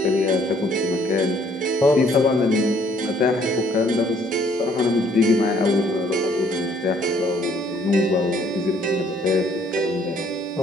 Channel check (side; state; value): both; normal; correlation 0.63